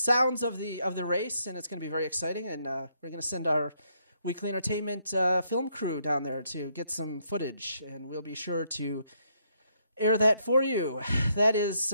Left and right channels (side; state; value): both; inverted; correlation -0.73